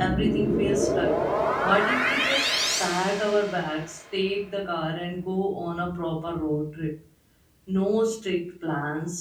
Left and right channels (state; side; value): identical; both; correlation 1.00